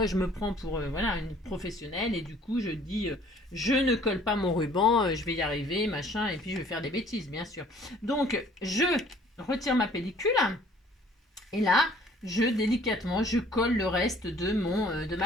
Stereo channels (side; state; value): both; normal; correlation 0.55